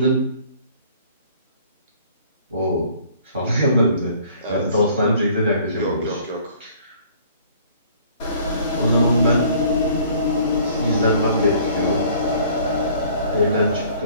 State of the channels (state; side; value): inverted; both; correlation -0.55